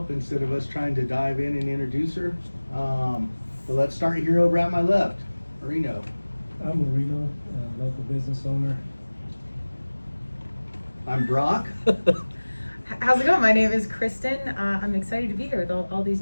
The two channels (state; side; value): inverted; both; correlation -1.00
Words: instead of us trying to dive in and introduce her. But let's start here over at my left. Marino. I'm Marino, local business owner. I'm Brock. How's it going? My name is Kristen. I'm excited to be here with all these